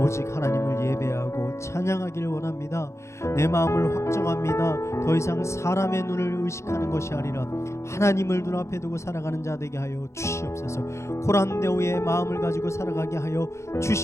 하나님을 예배하고 찬양하기를 원합니다. 내 마음을 확정합니다. 더 이상 사람의 눈을 의식하는 것이 아니라 하나님을 눈앞에 두고 살아가는 자 되게 하여 주시옵소서. 코란데오의 마음을 가지고 살아가게 하여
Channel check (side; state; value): right; late; 0.14 ms